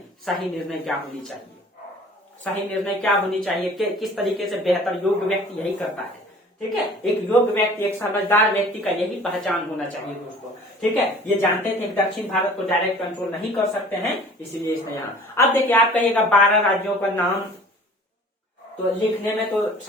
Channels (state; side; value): normal; both; correlation 0.48